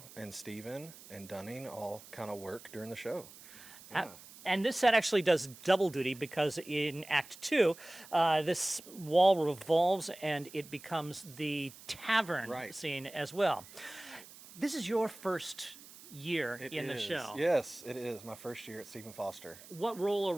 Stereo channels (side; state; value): right; noise; hiss, 19 dB below the sound